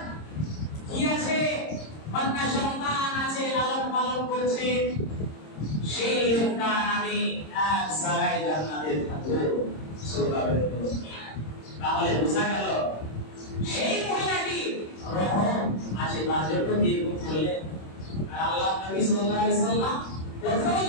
কি আছে, কন্যা সন্তান আছে, লালন পালন করছে, সেই লোকটা আমি এক জায়গায় জান্নাতে থাকবো। সুবহানাল্লাহ। তাহলে বোঝা গেল সেই মহিলাটি রহম আছে, তার জন্য নির্ভর করলেন। আর আল্লাহ নবী সাল্লাল্লাহু আলাইহি সাল্লাম প্রথমে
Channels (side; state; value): right; late; 26 ms